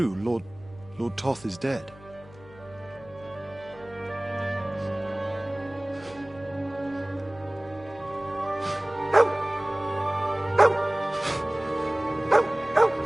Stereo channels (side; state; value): left; noise; hum, 21 dB below the sound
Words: Lord Toth is dead.